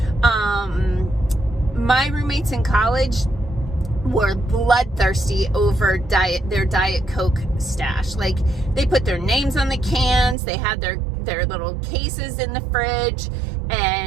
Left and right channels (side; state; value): left; drops out; at 10.4 s